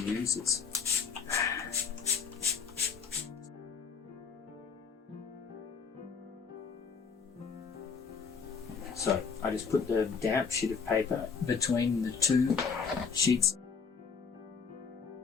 So I just put the damp sheet of paper between the two sheets.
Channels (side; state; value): right; quieter; 5.7 dB